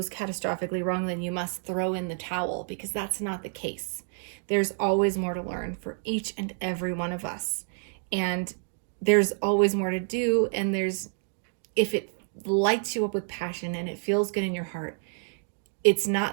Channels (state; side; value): silent; left; 59 dB below the other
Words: catastrophically wrong, then you must throw in the towel, because that's not the case. There's always more to learn for each and every one of us. And there's always more to do, and if it lights you up with passion and it feels good in your heart, it's